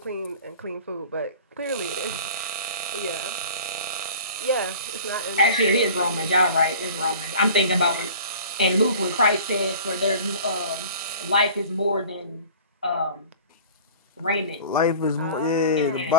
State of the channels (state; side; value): inverted; both; correlation -0.43